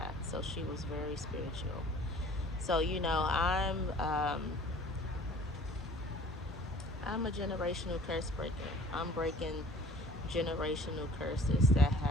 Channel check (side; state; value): both; normal; correlation 0.49